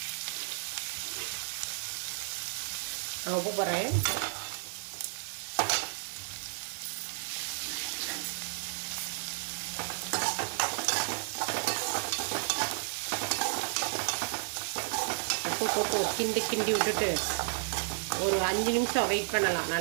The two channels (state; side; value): silent; left; digital silence